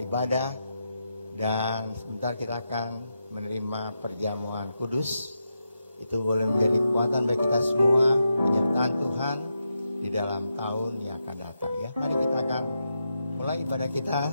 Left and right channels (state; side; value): inverted; both; correlation -0.86